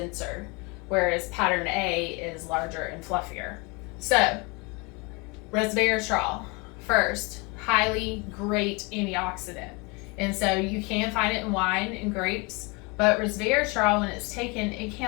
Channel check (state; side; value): quieter; right; 28.5 dB